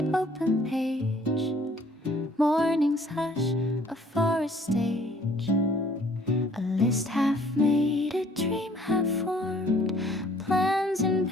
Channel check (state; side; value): normal; both; correlation 0.58